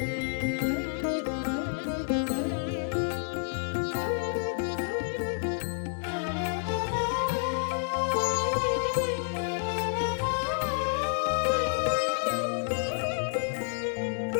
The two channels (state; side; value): silent; right; digital silence